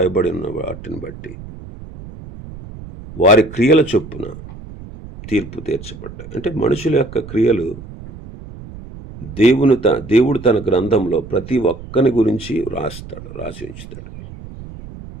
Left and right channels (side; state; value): right; noise; rumble, 15 dB below the sound